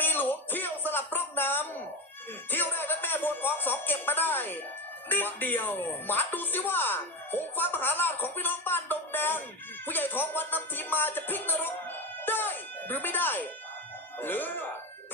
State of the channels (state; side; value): normal; both; correlation 0.18